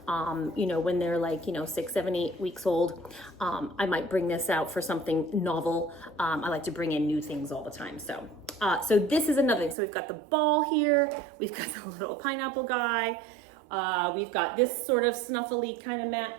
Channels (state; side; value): drops out; left; at 9.8 s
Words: you know, when they're like, you know, 6, 7, 8 weeks old. I might bring this out for something novel. I like to bring in new things all the time. So this is another thing. So we've got the ball here. We've got the little pineapple guy. We've got this sort of snuffly kind of mat.